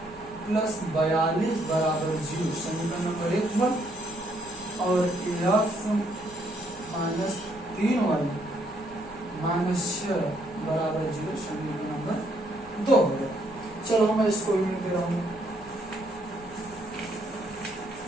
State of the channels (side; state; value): right; noise; hum, 21 dB below the sound